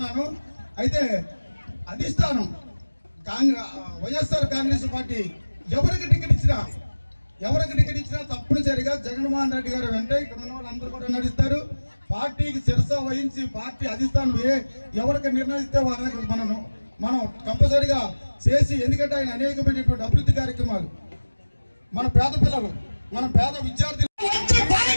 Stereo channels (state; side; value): inverted; both; correlation -1.00